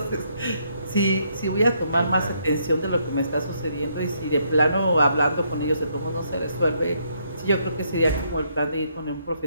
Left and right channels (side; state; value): both; inverted; correlation -0.73